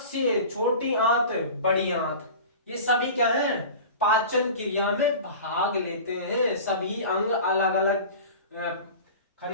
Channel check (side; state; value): both; inverted; correlation -0.36